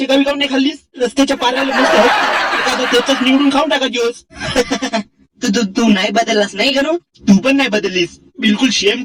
गावी काऊन नाही खाल्लीस? रस्त्याच्या पाराला मस्त एखादं त्याच निवडून खाऊन टाका दिवस. तू तू तू नाही बदललास नाही गणू? तू पण नाही बदललीस. बिलकुल शेम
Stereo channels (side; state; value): both; identical; correlation 1.00